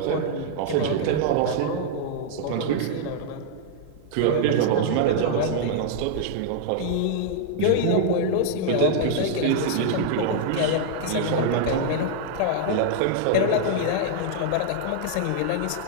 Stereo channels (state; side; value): different; both; correlation -0.01